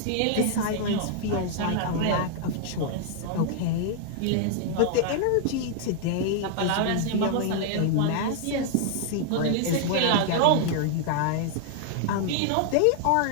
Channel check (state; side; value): different; both; correlation 0.00